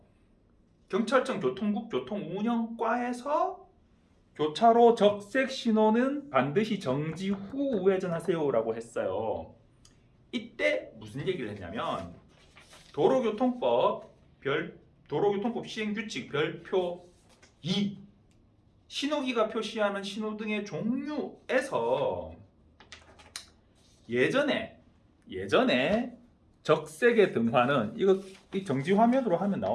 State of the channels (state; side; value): identical; both; correlation 1.00